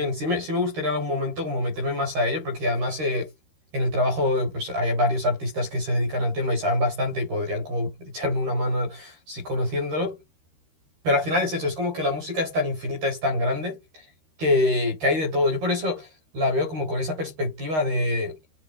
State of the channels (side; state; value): left; late; 13 ms